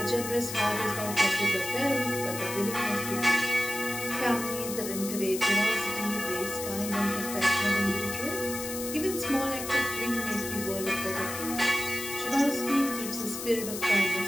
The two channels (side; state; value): left; noise; hiss, 7 dB below the sound